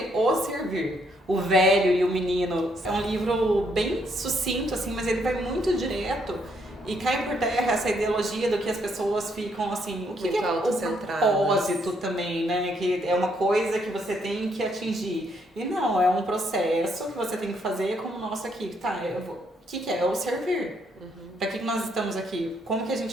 o servir. O Velho e o Menino. É um livro bem sucinto, assim, mas ele vai muito direto e cai por terra essa ideologia do que as pessoas ficam assim, o que é o propósito também, né? Que é uma coisa que você tem que atingir. E não, é um processo que você tem que fazer como o nosso aqui. Tá, o que é? É o servir. Para que nós estamos aqui? Como que a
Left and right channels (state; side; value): normal; both; correlation 0.72